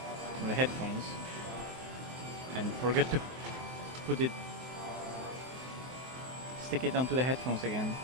from the headphones. And forgot to put it... stick it onto the headphones again.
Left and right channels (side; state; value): left; late; 23 ms